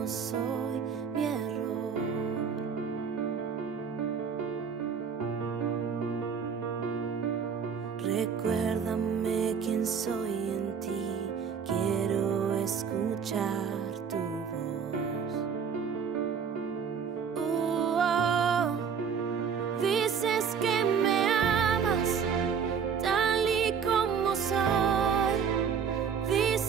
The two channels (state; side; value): quieter; left; 6.7 dB